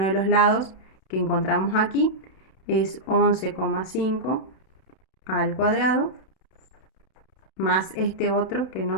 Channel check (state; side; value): late; right; 31 ms